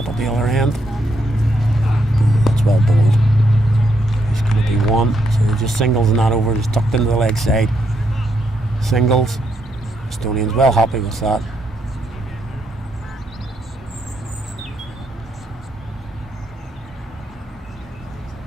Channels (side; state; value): both; normal; correlation 0.77